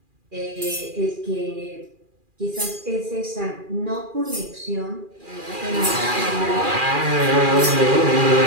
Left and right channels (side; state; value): left; late; 2.4 ms